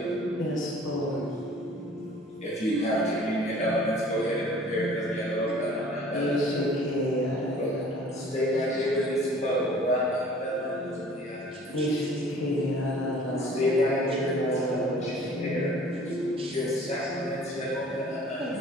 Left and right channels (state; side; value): normal; both; correlation 0.50